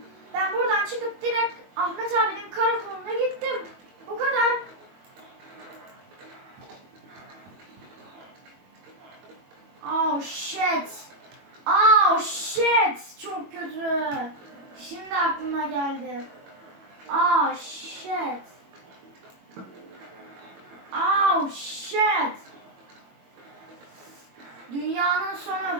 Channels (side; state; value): left; late; 21 ms